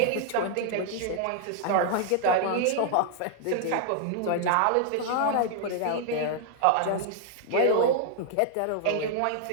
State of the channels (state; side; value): different; both; correlation 0.00